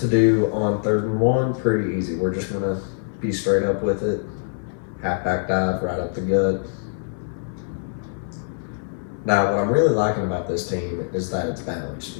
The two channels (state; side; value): silent; right; 62 dB below the other